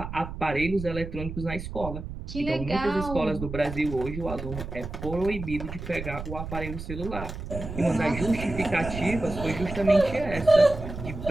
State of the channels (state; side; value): noise; right; rumble, 8 dB below the sound